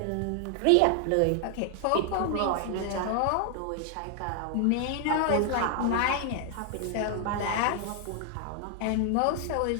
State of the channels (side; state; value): both; different; correlation 0.00